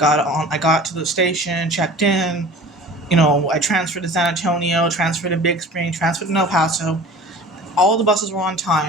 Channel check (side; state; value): both; normal; correlation 0.42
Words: to the station, checked in. I transferred to San Antonio, transferred to Big Spring, transferred to El Paso. All the buses were on